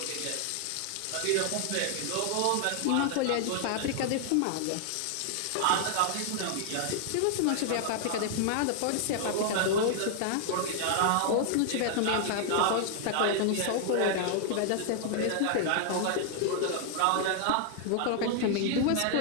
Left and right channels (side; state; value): both; different; correlation 0.00